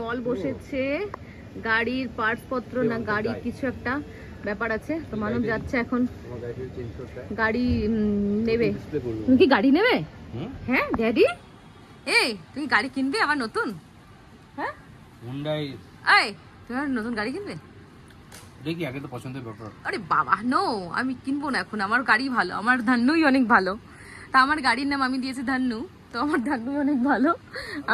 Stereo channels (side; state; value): both; identical; correlation 1.00